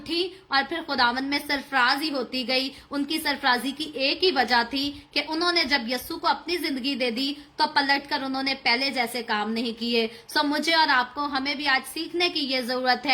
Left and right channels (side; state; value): both; identical; correlation 1.00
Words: और फिर खुदावन में सरफराजी होती गई। उनकी सरफराजी की एक ही वजह थी कि उन्होंने जब यस्सु को अपनी जिंदगी दे दी तो पलटकर उन्होंने पहले जैसे काम नहीं किए। सो मुझे और आपको, हमें भी आज सीखने की ये जरूरत